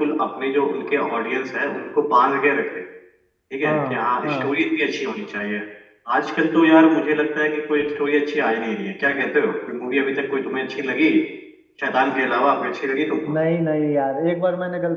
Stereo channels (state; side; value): identical; both; correlation 1.00